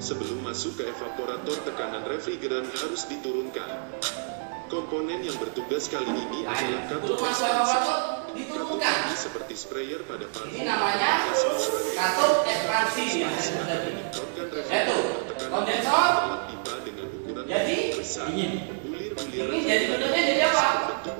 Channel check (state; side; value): silent; left; digital silence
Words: masuk ke evaporator, tekanan refrigeran harus diturunkan. Komponen yang bertugas kali ini Nah, adalah itu katup masuk ekspansi. evaporator Katup diturunkan. ini seperti sprayer pada parfum. Ini namanya katup ekspansi yang saya sebut tadi. Menyemprotkan Yaitu refrigeran tekanan kondensor. dalam pipa dengan ukuran Jadi, besar. Bulir-bulir Ini jadi bentuknya jadi apa? bentuk